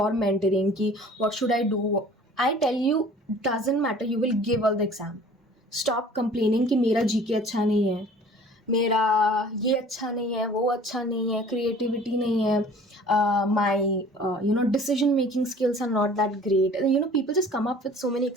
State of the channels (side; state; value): both; normal; correlation 0.49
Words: मेंटरिंग कि what should I do, I tell you doesn't matter. You will give all the exam. Stop complaining कि मेरा GK अच्छा नहीं है, मेरा ये अच्छा नहीं है, वो अच्छा नहीं है, क्रिएटिविटी नहीं है, my decision making skills are not that great. People just come up with so many